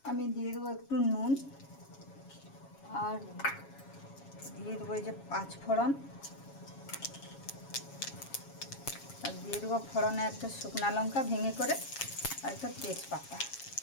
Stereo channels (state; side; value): late; right; 7.3 ms